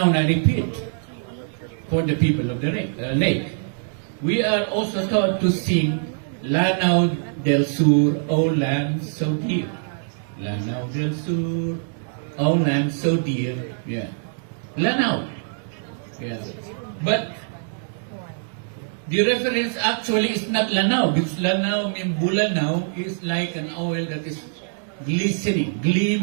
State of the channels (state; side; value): silent; left; digital silence